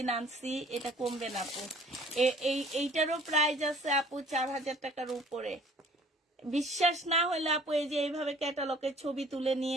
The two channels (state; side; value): normal; both; correlation 0.53